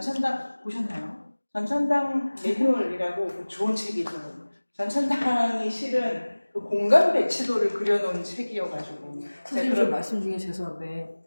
보셨나요? 전천당 매뉴얼이라고 좋은 책이 있어요. 전천당이 실은 그 공간 배치도를 그려놓은 책이어가지고. 선생님 저 말씀 중에 죄송한데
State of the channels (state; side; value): inverted; both; correlation -1.00